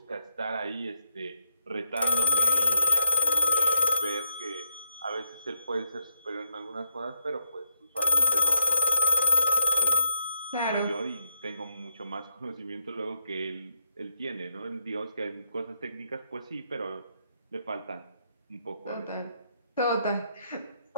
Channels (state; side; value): inverted; both; correlation -0.78